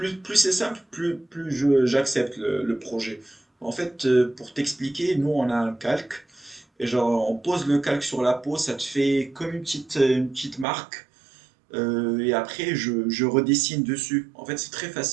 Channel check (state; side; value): drops out; left; at 10.7 s